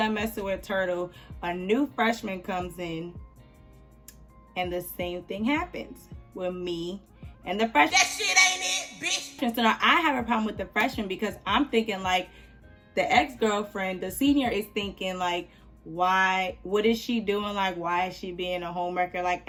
messing with Turtle, a new freshman comes in, and the same thing happens with me and the freshman. That shit ain't it, bitch. So now I have a problem with the freshman because I'm thinking like the ex-girlfriend, the senior is thinking like, why, what is she doing? Like, why is she being a homewrecker? Like,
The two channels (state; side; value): identical; both; correlation 1.00